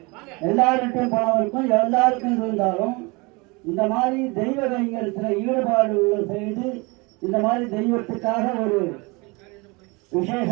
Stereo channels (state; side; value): quieter; left; 27.0 dB